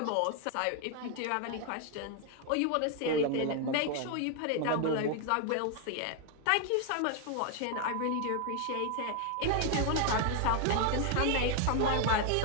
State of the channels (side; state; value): both; different; correlation 0.01